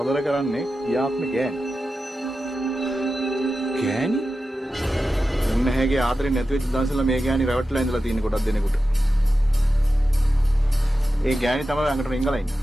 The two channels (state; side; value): normal; both; correlation 0.92